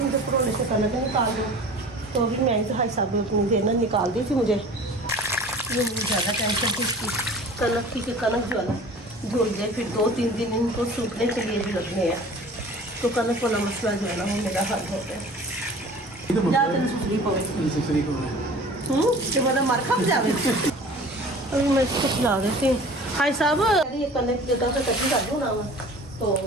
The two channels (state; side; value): normal; both; correlation 0.43